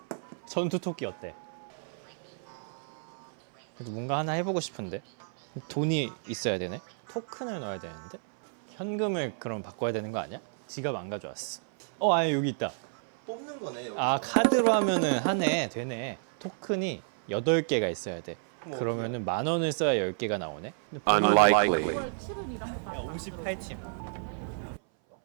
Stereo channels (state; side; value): silent; left; 56 dB below the other